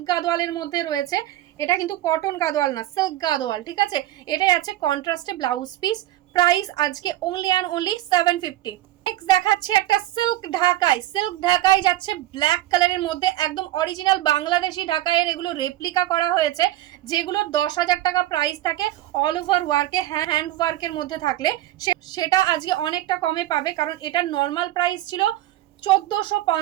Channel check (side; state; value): left; quieter; 15.0 dB